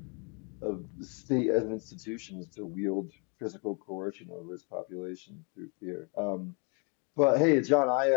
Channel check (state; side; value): quieter; right; 35.8 dB